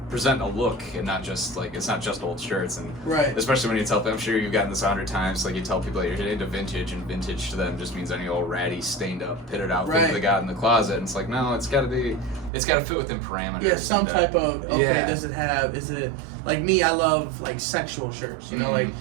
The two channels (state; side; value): drops out; left; at 12.5 s